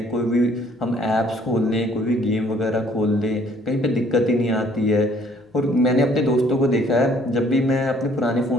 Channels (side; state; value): both; normal; correlation 0.60